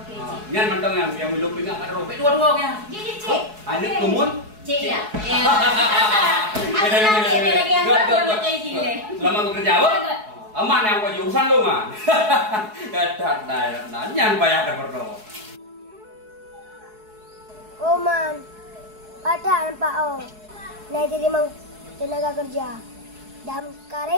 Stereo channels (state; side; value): late; left; 4.7 ms